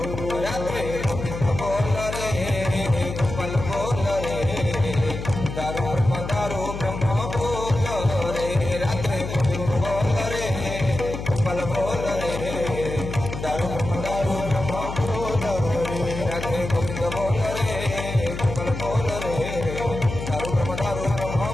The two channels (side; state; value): left; noise; hum, 7 dB below the sound